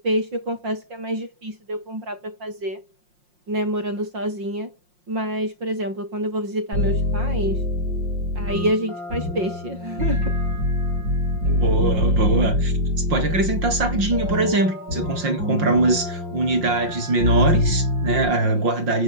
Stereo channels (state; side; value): late; left; 5.6 ms